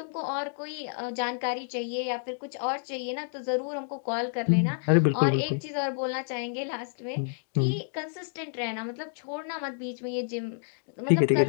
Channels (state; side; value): silent; right; digital silence